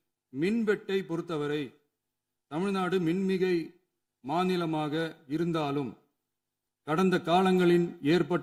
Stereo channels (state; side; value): identical; both; correlation 1.00